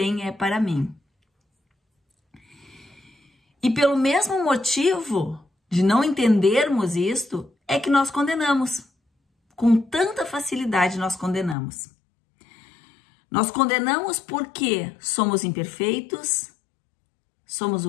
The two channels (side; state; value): right; drops out; at 11.6 s